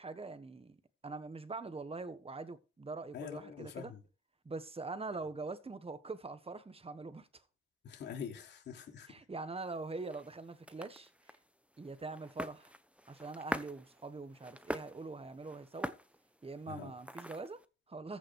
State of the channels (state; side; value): normal; both; correlation 0.57